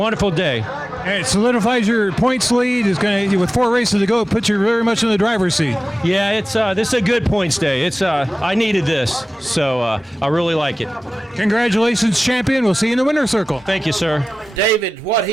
day. And it solidifies your points lead. It's going to, with 4 races to go, it puts you very much in the driver's seat. Yeah, this is a good points day. I needed this, so I really like it. Congratulations, champion. We'll see you in the winner's circle. Thank you, sir. David, what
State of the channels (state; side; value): normal; both; correlation 0.96